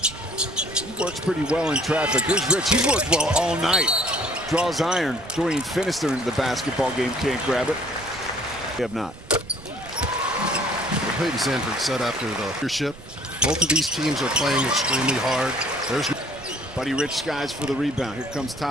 He works pretty well in traffic. Here's Rich. He's worked well all night. Draws iron. Dorian Finister into the basketball game. Can't grab it. They have not. Peyton Sanford said after the leadership, both of these teams are playing extremely hard. There's Buddy Rich skies for the rebound. Here comes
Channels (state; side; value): noise; right; rumble, 18 dB below the sound